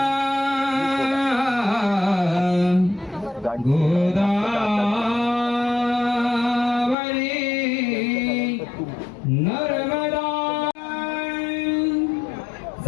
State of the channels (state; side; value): drops out; right; at 7.0 s